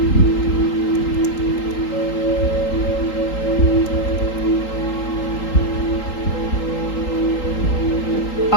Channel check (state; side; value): late; right; 3.8 ms